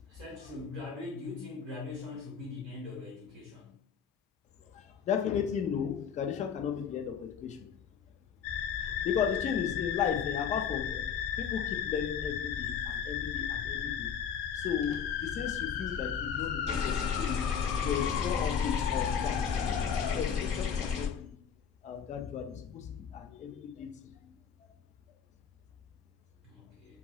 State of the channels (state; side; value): quieter; right; 7.4 dB